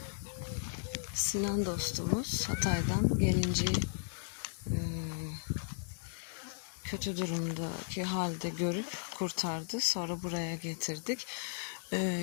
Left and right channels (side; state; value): right; silent; 54 dB below the other